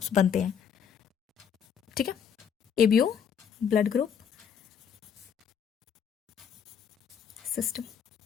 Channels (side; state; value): right; quieter; 7.7 dB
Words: बनते हैं। ठीक है। ABO blood group system